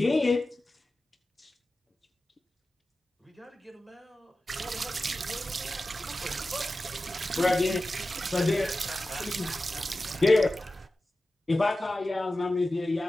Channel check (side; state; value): both; normal; correlation 0.94